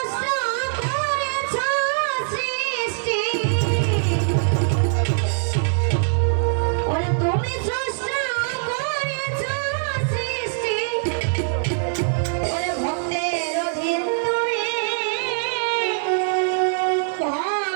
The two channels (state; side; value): silent; left; digital silence